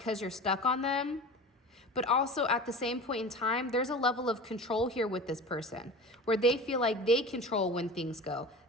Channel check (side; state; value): both; normal; correlation 0.35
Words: you're stuck on them. But also at the same point in time, there's a level of control here with this person where they feel like they control when things go.